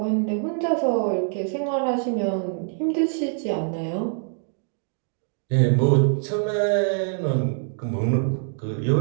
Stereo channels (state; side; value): silent; left; 59 dB below the other